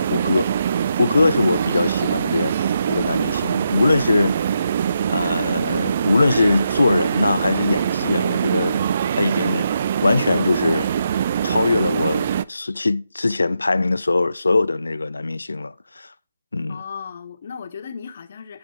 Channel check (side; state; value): both; inverted; correlation -0.82